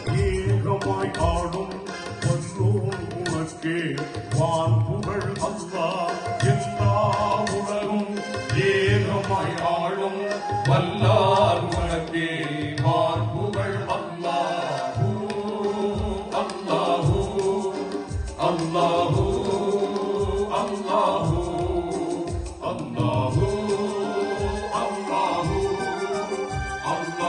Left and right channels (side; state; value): both; identical; correlation 1.00